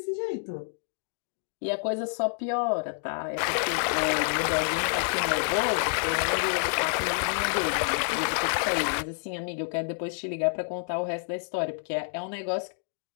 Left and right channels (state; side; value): silent; right; digital silence